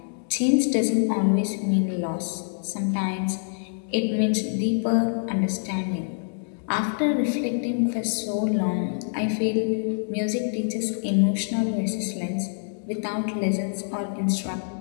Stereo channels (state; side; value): silent; right; digital silence